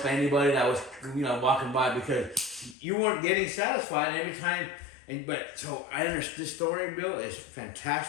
anybody that was, you know, walking by because you weren't getting satisfied every time. But so I understand this story, Bill, is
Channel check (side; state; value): right; drops out; at 2.8 s